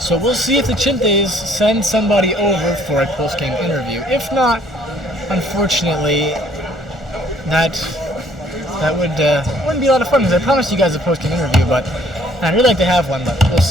we'll see if the Chintes send somebody over for a post-game interview. If not, unfortunately, that wouldn't be a lot of fun, because I promised you guys a post-game interview, but I'd really like to have one, but we'll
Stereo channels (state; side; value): normal; both; correlation 0.61